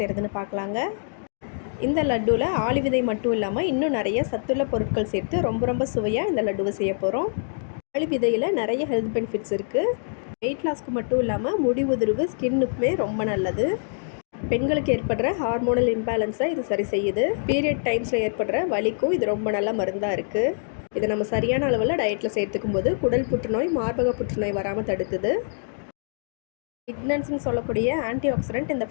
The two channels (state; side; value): silent; right; digital silence